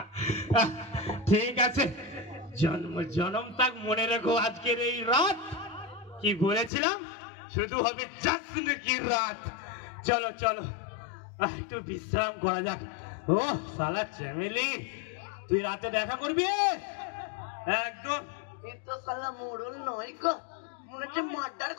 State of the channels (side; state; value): right; drops out; at 6.7 s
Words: ঠিক আছে, জন্ম জনম তাক মনে রেখো আজকের এই রাত। কি বলেছিলাম? শুধু হবে জশ্ন কি রাত। চলো চলো একটু বিশ্রাম করা যাক। ও শালা চ্যামেলি, তুই রাতে দেখা করবি একদম? এই তো শালা মোড়ল নয় গো, মনে হচ্ছে মার্ডার